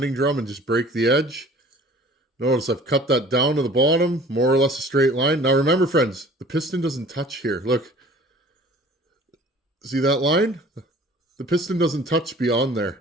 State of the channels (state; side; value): normal; both; correlation 0.48